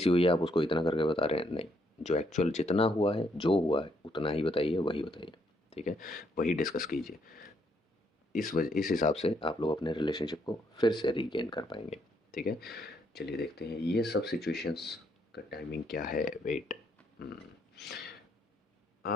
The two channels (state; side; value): normal; both; correlation 0.73